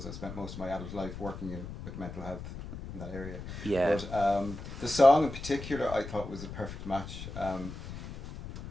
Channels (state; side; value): noise; left; rumble, 10 dB below the sound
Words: I spent most of my adult life working with mental health in that area. Yeah. But the song in particular, I thought was a perfect match.